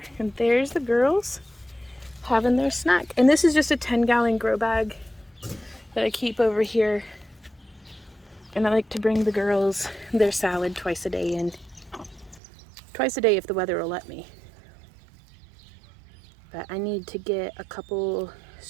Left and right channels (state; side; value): drops out; left; at 12.4 s